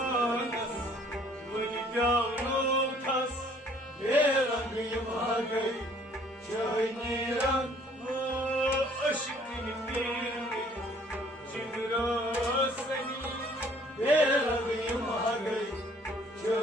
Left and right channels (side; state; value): both; normal; correlation 0.59